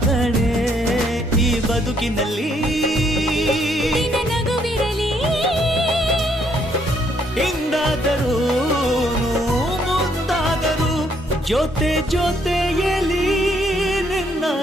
ಕಣೆ ಈ ಬದುಕಿನಲ್ಲಿ ನಿನ್ನ ನಗುವಿರಲಿ ಹಿಂದಾದರೂ ಮುಂದಾದರೂ ಜೊತೆ ಜೊತೆಯಲಿ ನಿನ್ನ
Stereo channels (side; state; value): both; normal; correlation 0.70